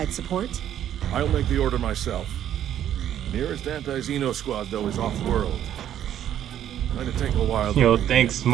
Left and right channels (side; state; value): left; quieter; 10.9 dB